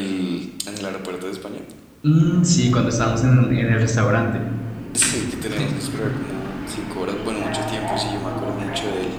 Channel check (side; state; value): both; identical; correlation 1.00